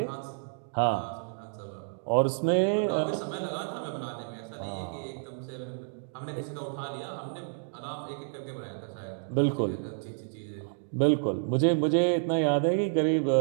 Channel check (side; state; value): left; silent; digital silence